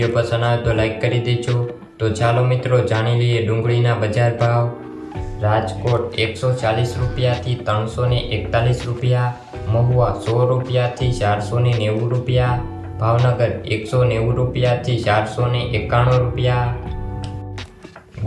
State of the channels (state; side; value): identical; both; correlation 1.00